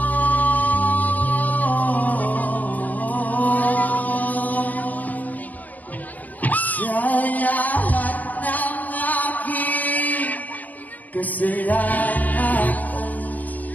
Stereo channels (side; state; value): right; late; 0.080 ms